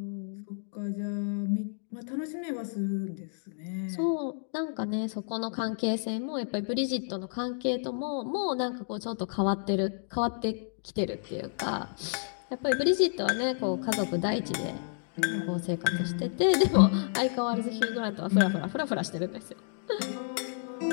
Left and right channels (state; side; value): silent; right; digital silence